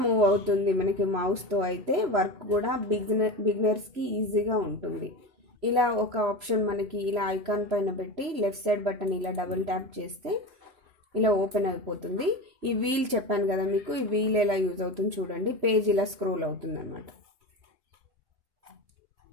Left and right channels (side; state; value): left; late; 3.0 ms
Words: మూవ్ అవుతుంది మనకి మౌస్తో. అయితే వర్క్ కూడా బిగినర్స్కి ఈజీగా ఉంటుంది. ఇలా ఒక ఆప్షన్ మనకి ఇలా ఐకాన్ పైన పెట్టి లెఫ్ట్ సైడ్ బటన్ ఇలా డబుల్ ట్యాప్ చేస్తే ఇలా ఓపెన్ అయిపోతుంది. ఈ వీల్ చెప్పాను కదా మీకు, ఈ వీల్ ఎలా యూజ్ అవుతుంది చూడండి. పేజ్ ఇలా స్క్రోల్ అవుతుంది అన్నమాట.